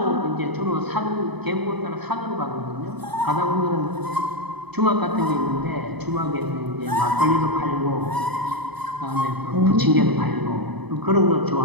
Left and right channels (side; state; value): left; late; 0.99 ms